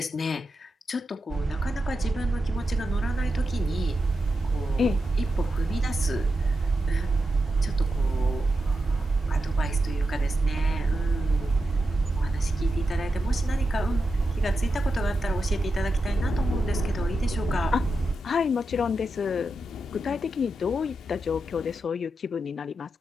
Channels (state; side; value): normal; both; correlation 0.88